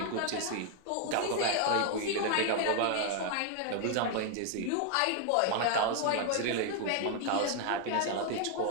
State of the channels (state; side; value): different; both; correlation 0.00